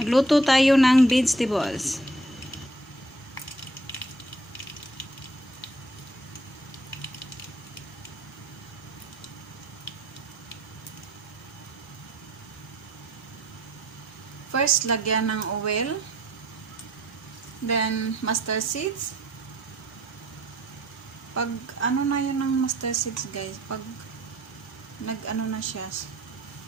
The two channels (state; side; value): normal; both; correlation 0.59